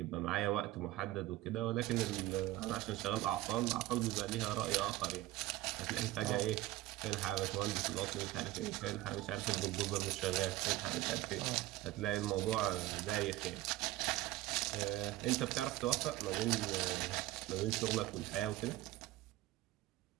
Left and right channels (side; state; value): left; quieter; 16.7 dB